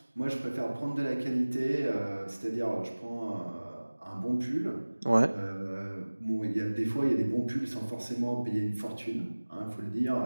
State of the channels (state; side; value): inverted; both; correlation -1.00